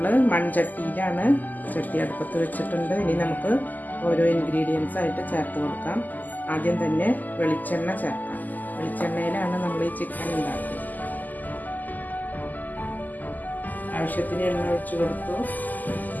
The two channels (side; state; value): right; late; 0.083 ms